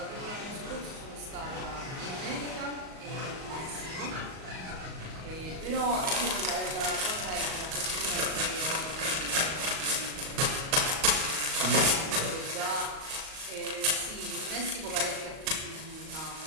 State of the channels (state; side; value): late; left; 38 ms